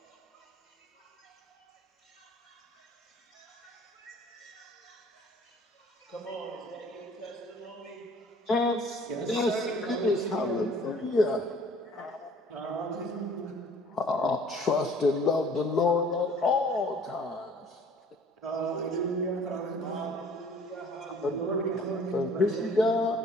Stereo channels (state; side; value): normal; both; correlation 0.52